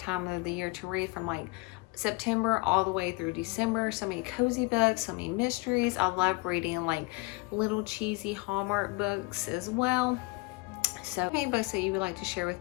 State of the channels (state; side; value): quieter; right; 25.7 dB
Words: of the year to read, from like September all the way through December. So many cozy books, so many mysteries. I love reading like little cheesy Hallmark books as well. So any books that you would like to share with